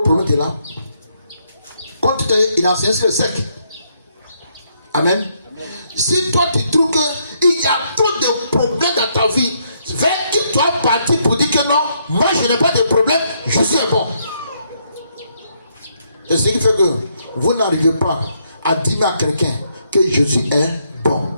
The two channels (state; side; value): inverted; both; correlation -0.74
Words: problème qui est là. Quand tu t'es, il a enseigné sur le sec. Amen. Si toi tu trouves qu'il y a trop de problèmes dans ta vie, vers qui tu es parti pour dire que non, moi je n'ai pas de problème, Jésus est bon. Et ce qui fait que vous n'arrivez pas à dire à quelqu'un que Jésus est bon.